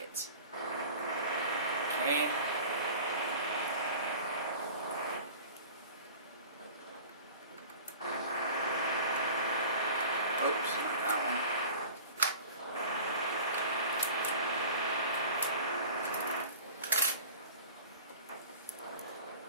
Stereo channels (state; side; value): inverted; both; correlation -0.41